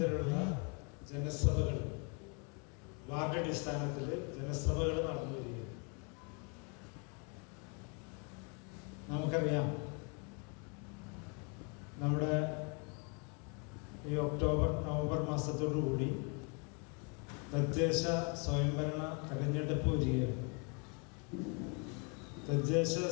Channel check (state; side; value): quieter; right; 35.4 dB